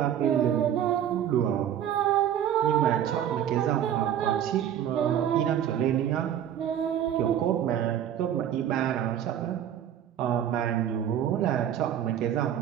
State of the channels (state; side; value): quieter; left; 10.1 dB